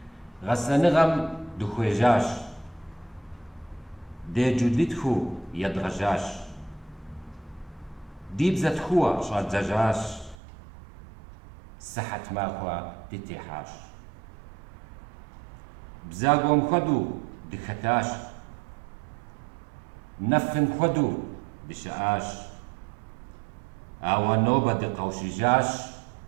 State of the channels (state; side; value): drops out; left; at 10.4 s